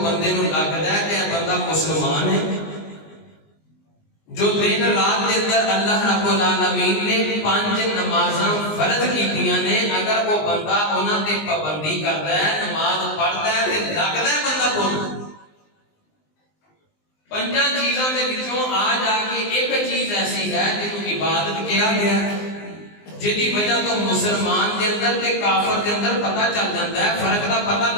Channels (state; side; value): late; right; 19 ms